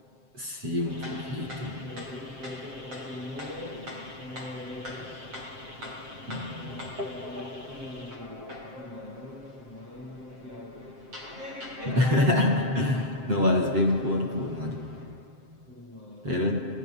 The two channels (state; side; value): late; left; 7.6 ms